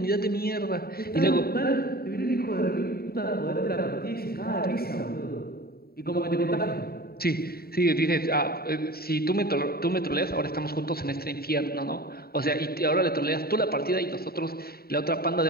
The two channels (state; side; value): late; right; 0.45 ms